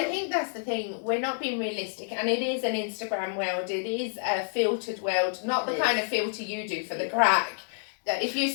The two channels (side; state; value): right; silent; digital silence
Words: think that's the thing, we're not being realistic, and it is an Instagram world, it is a filtered world, not the kind of filter you do for the crack. If you